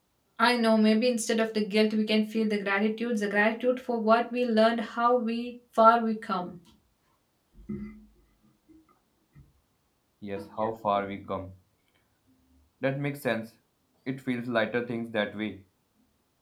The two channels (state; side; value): identical; both; correlation 1.00